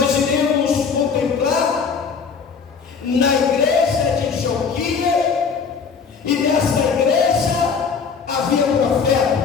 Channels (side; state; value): right; quieter; 5.8 dB